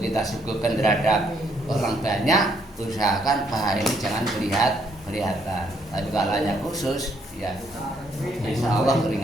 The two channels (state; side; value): normal; both; correlation 0.71